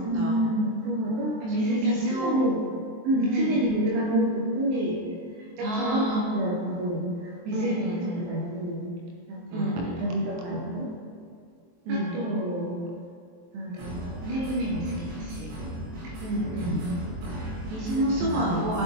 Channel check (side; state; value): left; late; 23 ms